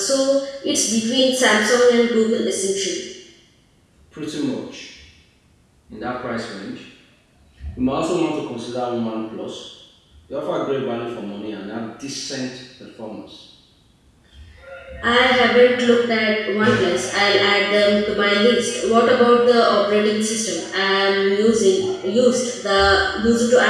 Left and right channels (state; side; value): identical; both; correlation 1.00